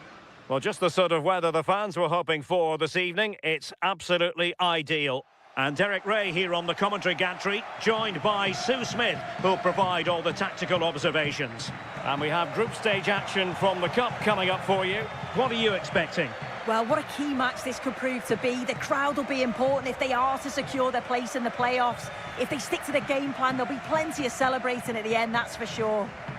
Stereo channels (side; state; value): both; identical; correlation 1.00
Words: Well, just the sort of weather the fans were hoping for this evening. It's absolutely ideal. And Derek Ray here on the commentary gantry, joined by Sue Smith, who'll provide all the tactical observations. And we have group stage action from the Cup coming up for you. What are you expecting? Well, what a key match this could prove to be. The crowd will be important if they are to secure their place in the playoffs. If they stick to the game plan, there'll be plenty of celebrating at the end, that's for sure.